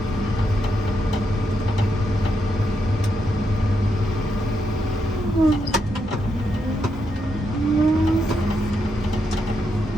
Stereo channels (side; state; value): both; normal; correlation 0.81